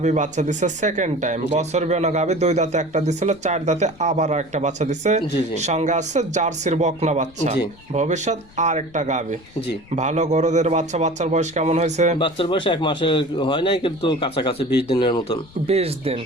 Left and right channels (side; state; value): left; noise; rumble, 24 dB below the sound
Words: বাচ্চা দিছে সেকেন্ড টাইম। বছর বেনা গাভী 2 দাঁতে একটা দিছিল, 4 দাঁতে আবার একটা বাচ্চা দিছে। জি জি। সঙ্গে আছে জার্সির বকনা বাচ্চা। জি। ভবিষ্যৎ আর একটা গাভী। জি। ভালো গরুদের বাচ্চা। বাচ্চার বয়স কেমন হয়েছে? বাচ্চার বয়স 1 মাসের হয় নাই, কিন্তু কাছাকাছি 20 দিনের মতন। 20 দিন।